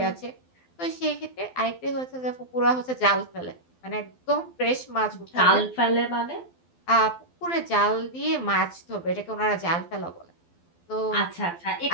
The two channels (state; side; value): late; right; 12 ms